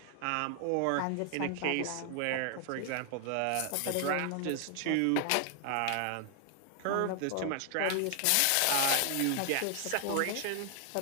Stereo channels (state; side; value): different; both; correlation 0.00